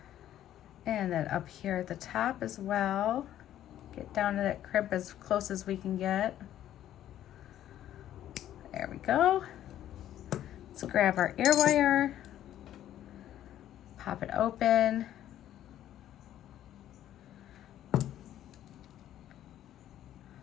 And then up here at the top as well. Get down to that crimp as close as we can get. There we go. Let's grab our ear wire, pop it open.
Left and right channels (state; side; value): quieter; right; 11.9 dB